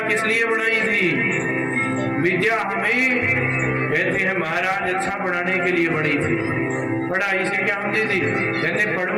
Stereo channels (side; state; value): both; identical; correlation 1.00